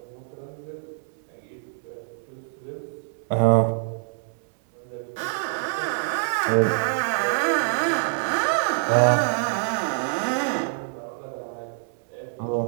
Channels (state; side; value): silent; left; 61 dB below the other